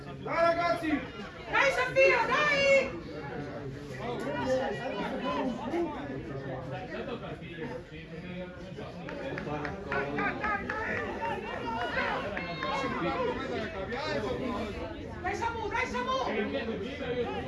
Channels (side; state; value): both; identical; correlation 1.00